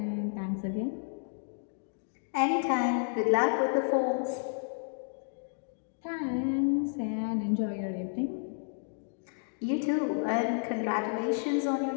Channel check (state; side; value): silent; right; digital silence